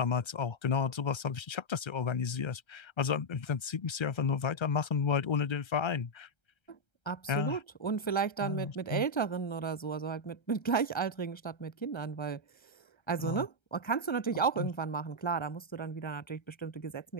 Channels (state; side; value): late; right; 1.3 ms